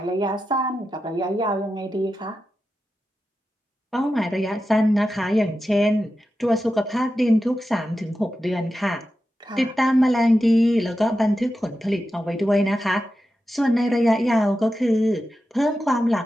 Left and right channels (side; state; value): both; normal; correlation 0.91